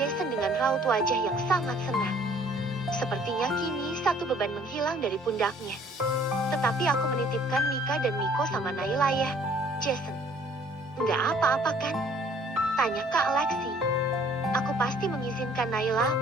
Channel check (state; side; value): normal; both; correlation 0.58